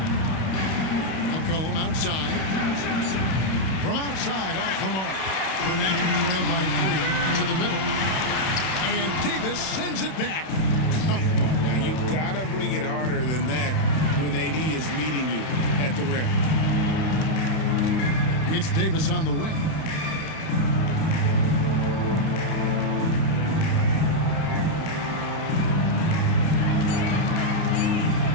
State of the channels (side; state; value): right; late; 31 ms